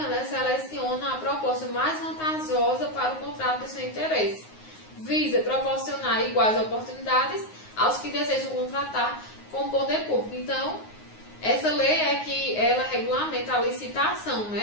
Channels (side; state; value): right; late; 9.5 ms